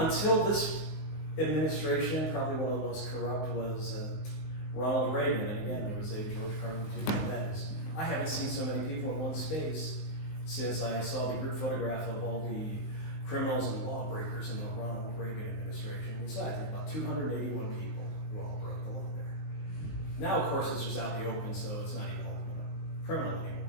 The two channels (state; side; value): late; right; 19 ms